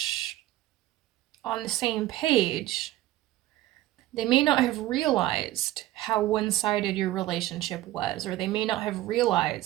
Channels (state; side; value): quieter; left; 15.6 dB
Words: on the same page. They may not have realized how one-sided your relationship was, or they may not have